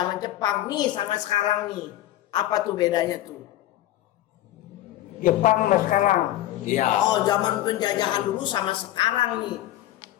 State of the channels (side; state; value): right; quieter; 14.3 dB